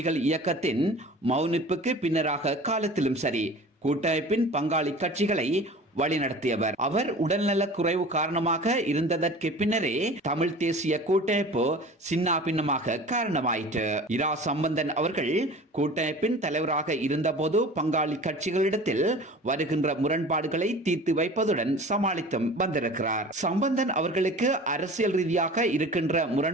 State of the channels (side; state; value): both; normal; correlation 0.40